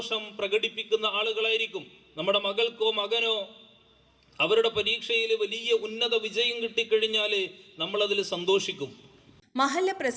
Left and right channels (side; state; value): both; identical; correlation 1.00